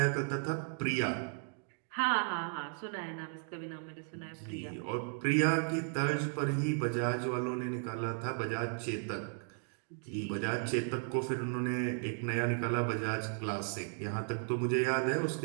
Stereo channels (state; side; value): silent; left; 54 dB below the other